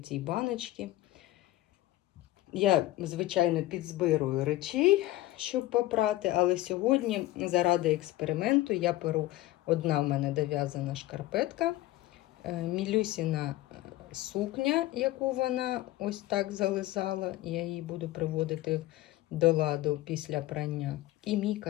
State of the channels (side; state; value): right; quieter; 16.6 dB